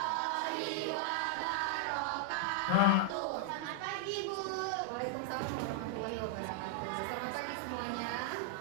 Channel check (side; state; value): both; different; correlation -0.01